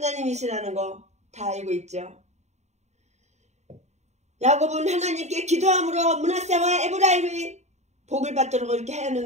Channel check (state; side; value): late; left; 0.33 ms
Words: 거 다 알고 있죠. 야곱은 하나님께 기도함으로 므낫세와 에브라임이 복을 받도록 이렇게